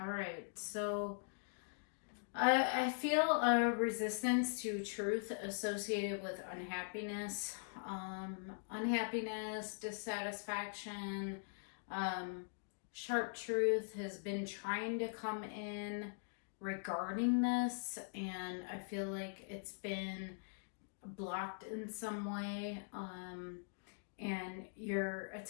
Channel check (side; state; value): right; silent; digital silence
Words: right, so I feel a resistance to truth associated with unhappiness. Unhappiness, dissatisfaction, sharp truth has been trying to come in regarding this, and I feel like it's been blocked in some way. And you're